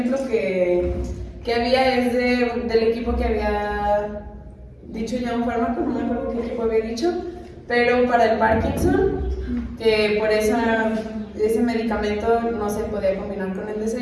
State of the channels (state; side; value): identical; both; correlation 1.00